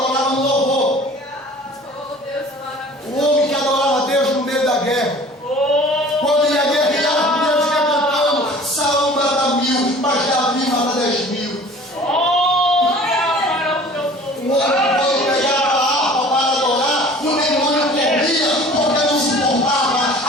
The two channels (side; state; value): both; normal; correlation 0.46